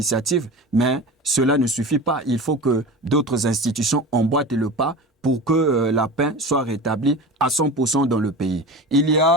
mais cela ne suffit pas. Il faut que d'autres institutions emboîtent le pas pour que la paix soit rétablie à 100% dans le pays. Il y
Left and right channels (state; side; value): normal; both; correlation 0.31